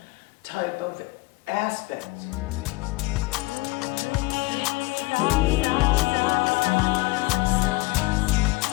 type of aspect.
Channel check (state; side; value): quieter; right; 22.8 dB